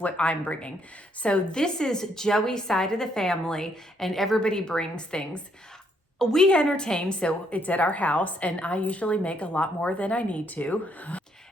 I'm bringing. So this is Joey's side of the family and everybody brings things. We entertain, so it's at our house, and I usually make a lot more than I need to.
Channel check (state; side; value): normal; both; correlation 0.72